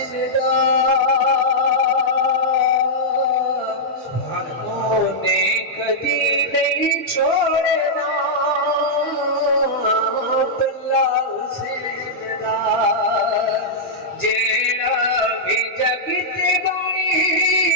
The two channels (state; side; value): normal; both; correlation -0.09